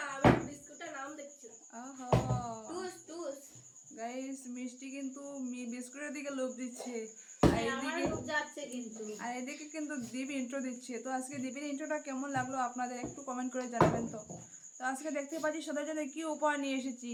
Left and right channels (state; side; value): identical; both; correlation 1.00